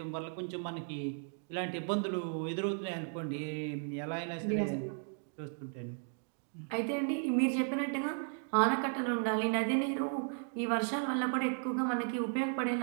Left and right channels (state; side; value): silent; left; 54 dB below the other